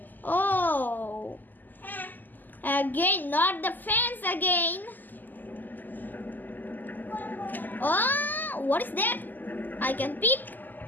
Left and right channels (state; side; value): late; right; 0.086 ms